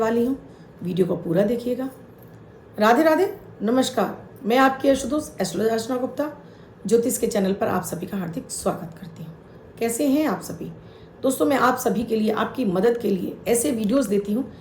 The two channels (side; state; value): both; identical; correlation 1.00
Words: हूँ। वीडियो को पूरा देखिएगा। राधे राधे, नमस्कार। मैं आपकी एस्ट्रोदोस्त एस्ट्रोलॉजर अर्चना गुप्ता ज्योतिष के चैनल पर आप सभी का हार्दिक स्वागत करती हूँ। कैसे हैं आप सभी? दोस्तों, मैं आप सभी के लिए, आपकी मदद के लिए ऐसे वीडियोस देती हूँ